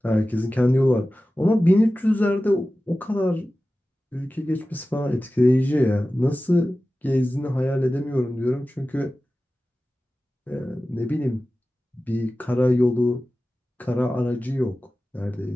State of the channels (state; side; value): normal; both; correlation 0.95